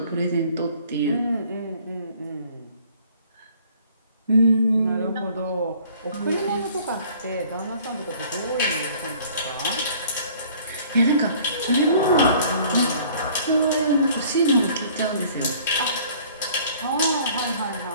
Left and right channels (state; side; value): inverted; both; correlation -0.54